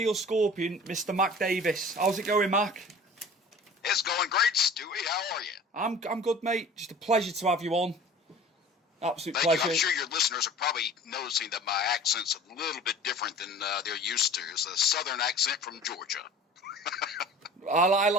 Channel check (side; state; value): both; normal; correlation 0.43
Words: Scorpion, Mr. Mac Davis. How's it going, Mac? It's going great, Stewie. How are you? I'm good, mate. Just a pleasure to have you on. Absolute Thank pleasure. you. I'm sure your listeners are probably noticing that my accent's a little bit different than they're used to. It's a southern accent from Georgia. I